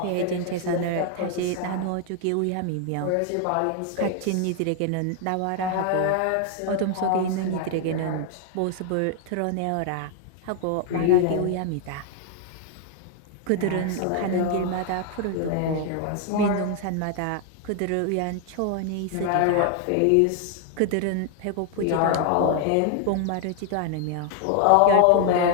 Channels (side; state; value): both; different; correlation 0.00